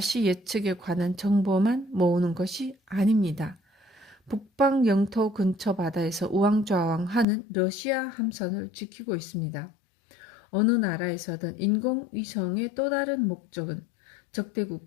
예측에 관한 정보만 모으는 것이 아닙니다. 북방 영토 근처 바다에서 우왕좌왕하는 러시아 함선을 지키고 있습니다. 어느 나라에서든 인공위성의 또 다른 목적은 적대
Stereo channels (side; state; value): right; drops out; at 7.2 s